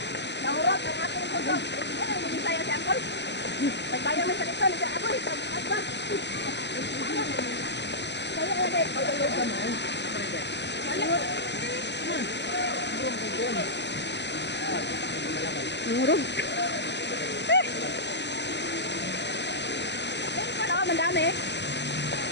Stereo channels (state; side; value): late; right; 0.50 ms